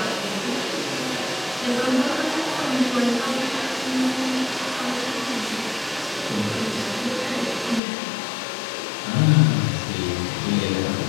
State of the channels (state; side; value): drops out; right; at 7.8 s